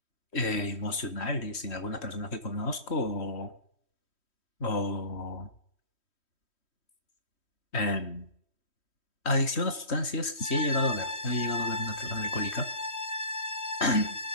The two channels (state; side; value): late; right; 3.1 ms